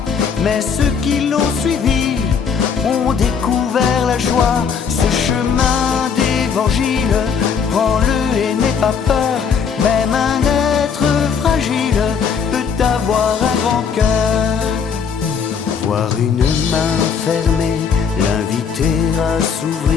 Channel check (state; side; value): quieter; right; 6.5 dB